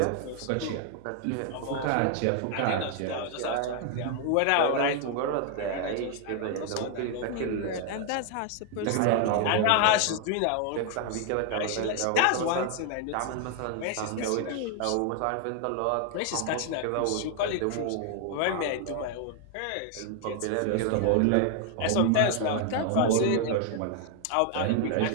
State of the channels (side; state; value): both; different; correlation 0.00